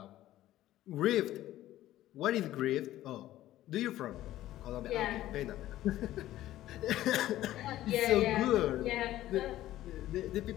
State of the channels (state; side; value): quieter; right; 14.3 dB